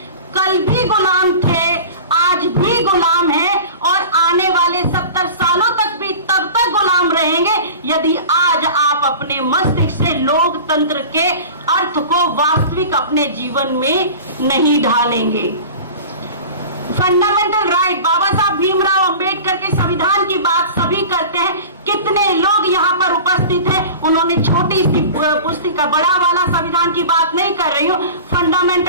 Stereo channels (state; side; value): inverted; both; correlation -0.37